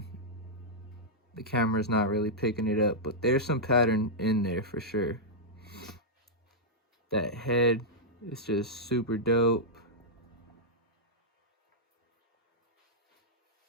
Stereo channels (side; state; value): both; normal; correlation -0.08